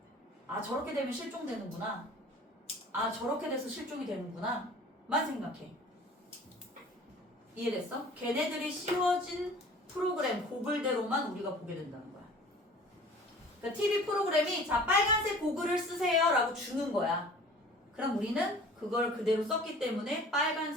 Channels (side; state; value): both; normal; correlation 0.46